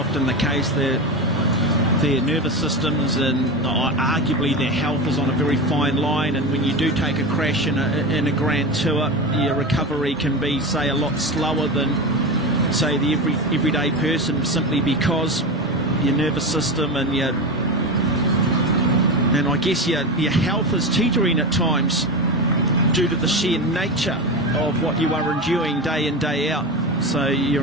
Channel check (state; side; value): normal; both; correlation 0.22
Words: the case, the their nervous systems and arguably their health is on a very fine line, and when you do take a crash in a Grand Tour, your recovery can be, say, a lot slower than, say, the everyday person, simply because your nervous system and I guess your health is teetering at times due to the sheer nature of what you are enduring day in, day out. So your